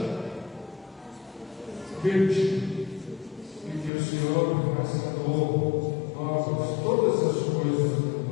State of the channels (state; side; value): drops out; right; at 3.9 s